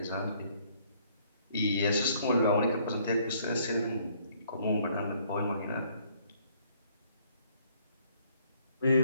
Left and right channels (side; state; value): both; inverted; correlation -0.65